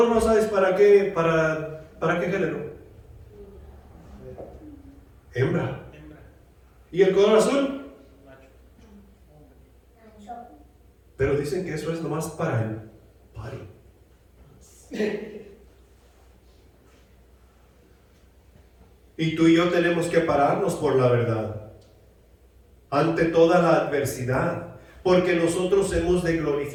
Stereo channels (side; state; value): both; identical; correlation 1.00